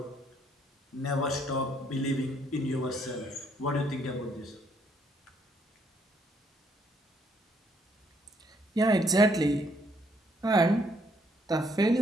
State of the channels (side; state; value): both; normal; correlation 0.69